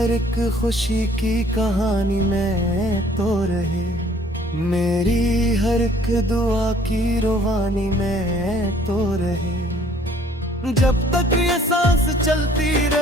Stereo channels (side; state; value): both; normal; correlation 0.57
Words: एक खुशी की कहानी में तो रहे मेरी हर एक दुआ की रुबानी में तो रहे जब तक ये सांस चलती